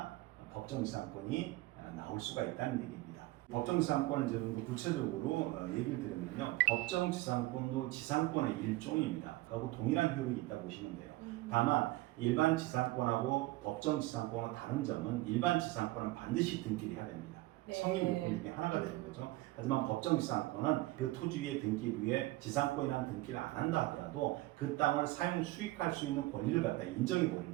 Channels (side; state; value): left; quieter; 19.3 dB